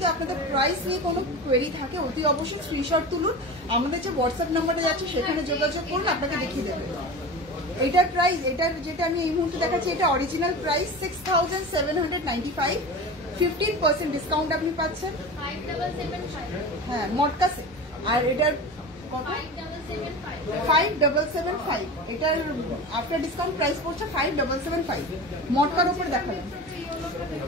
আপনাদের প্রাইস নিয়ে কোনো কোয়েরি থাকে অতি অবশ্যই স্ক্রিনশট তুলুন, আমাদের যে হোয়াটসঅ্যাপ নাম্বারে যাচ্ছে সেখানে যোগাযোগ করুন, আপনাকে দেখিয়ে দেবে। এটার প্রাইস, এটার যেটা আমি এই মুহূর্তে দেখাচ্ছি, এটা অরিজিনাল প্রাইস 6795, 15% ডিসকাউন্ট আপনি পাচ্ছেন। 5775 হ্যাঁ, মটকা সেট। আর এটার কত? 5775, এটার আফটার ডিসকাউন্ট প্রাইস পড়ছে 5775। মটকার উপর দেখাবেন।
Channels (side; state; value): both; normal; correlation 0.30